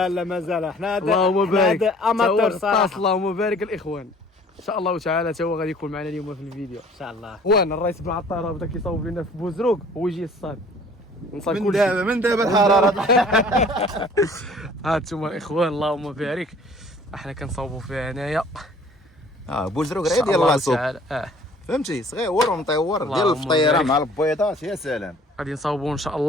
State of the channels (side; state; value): both; normal; correlation 0.52